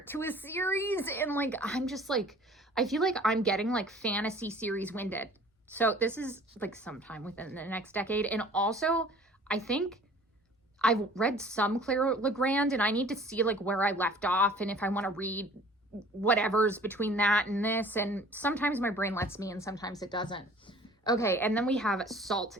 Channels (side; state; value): both; normal; correlation 0.49